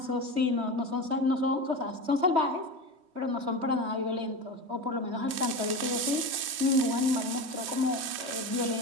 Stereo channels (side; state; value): left; late; 3.1 ms